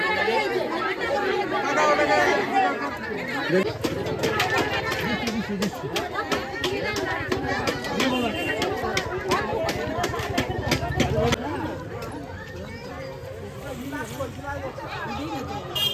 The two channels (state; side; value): identical; both; correlation 1.00